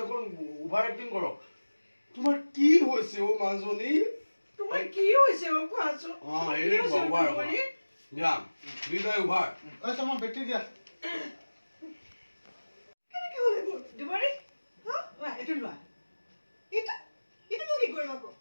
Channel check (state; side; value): inverted; both; correlation -1.00